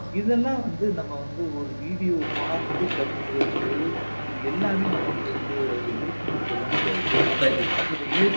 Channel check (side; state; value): both; inverted; correlation -1.00